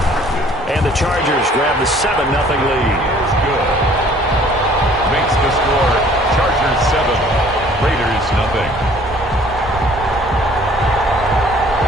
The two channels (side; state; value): both; normal; correlation 0.55